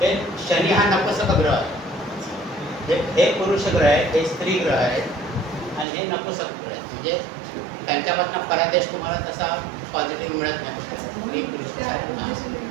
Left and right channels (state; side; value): drops out; left; at 5.9 s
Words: शनी हा नपुंसक ग्रह आहे. हे पुरुष ग्रह आहे, हे स्त्री ग्रह आहेत आणि हे नपुंसक ग्रह आहेत. म्हणजे त्यांच्यापासून फलादेश तुम्हाला तसा पॉझिटिव्ह मिळत नाही.